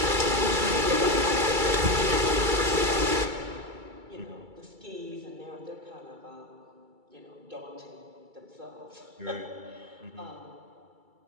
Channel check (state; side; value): late; left; 2.3 ms